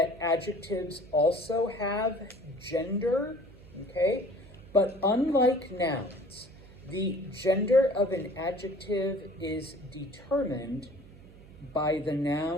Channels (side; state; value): right; noise; hum, 20 dB below the sound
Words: adjectives also have gender, okay? But unlike nouns, the gender of an adjective is determined by the